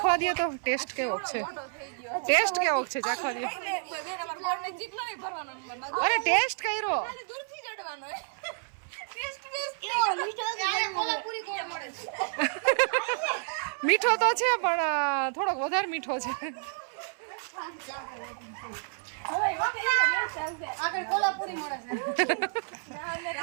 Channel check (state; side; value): silent; left; 58 dB below the other